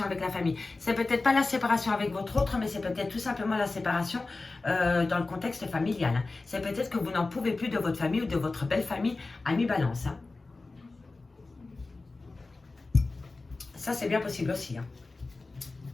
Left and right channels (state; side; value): quieter; right; 3.5 dB